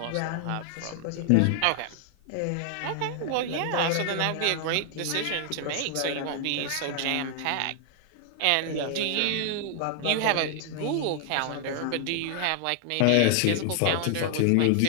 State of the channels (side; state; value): both; different; correlation 0.00